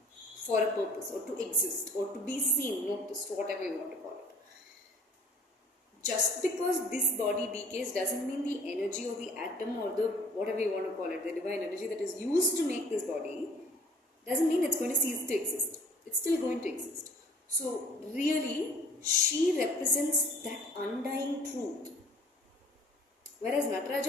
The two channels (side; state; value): both; normal; correlation 0.52